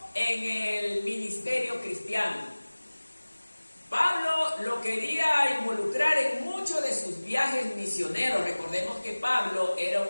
en el ministerio cristiano. Pablo lo quería involucrar en muchos de sus viajes misioneros. Recordemos que Pablo era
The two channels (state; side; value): inverted; both; correlation -1.00